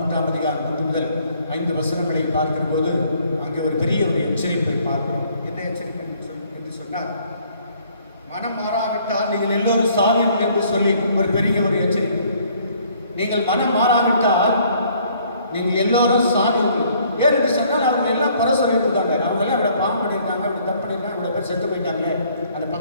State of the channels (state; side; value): inverted; both; correlation -0.61